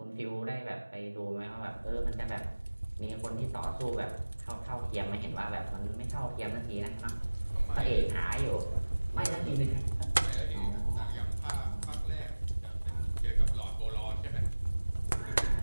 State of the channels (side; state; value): both; inverted; correlation -1.00